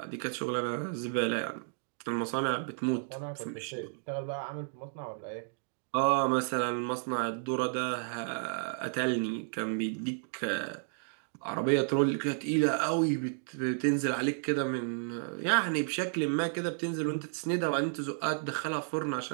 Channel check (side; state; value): left; silent; digital silence